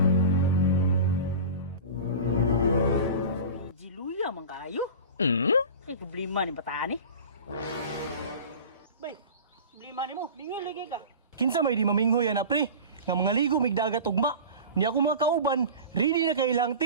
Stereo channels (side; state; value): both; inverted; correlation -0.34